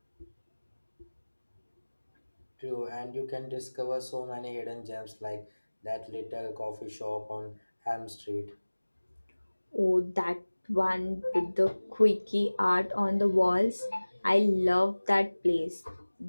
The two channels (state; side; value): inverted; both; correlation -1.00